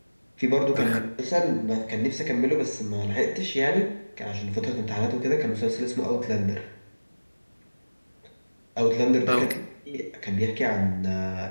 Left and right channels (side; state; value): both; inverted; correlation -1.00